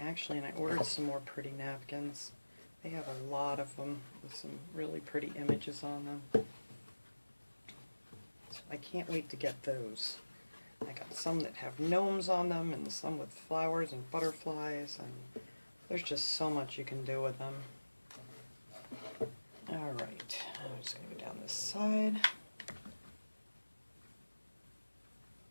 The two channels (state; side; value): inverted; both; correlation -1.00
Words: and I ordered some more pretty napkins. They have a lot of them with some really pretty images on them. So I can't wait to get those. I got some that have gnomes on them and some with flowers and butterflies, and there's just so much you can do with them. Alright, I'm just going to go down this side.